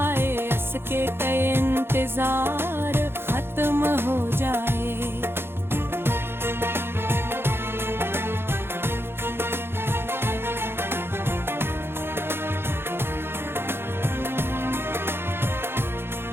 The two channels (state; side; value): late; left; 0.11 ms